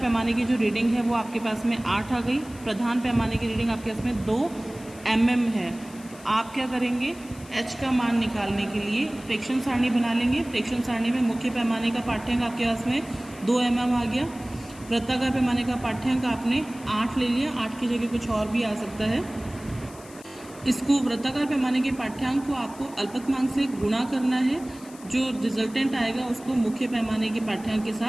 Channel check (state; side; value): noise; left; hiss, 21 dB below the sound